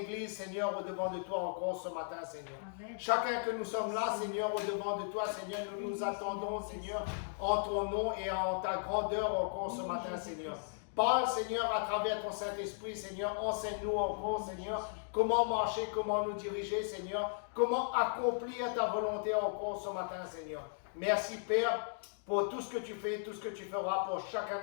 Seigneur, au-devant de toi encore ce matin, Seigneur. Amen. Chacun que nous sommes là, Seigneur, au-devant de toi, Seigneur, nous nous attendons, Seigneur, en ton nom et en ta grandeur encore ce matin, Seigneur. Parle, Seigneur, à travers ton Saint-Esprit, Seigneur, enseigne-nous encore, Seigneur, comment marcher, comment nous diriger, Seigneur, comment accomplir ta volonté encore ce matin, Seigneur. Merci, Père, pour tout ce que tu fais, tout ce que tu feras pour chacun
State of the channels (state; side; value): silent; right; digital silence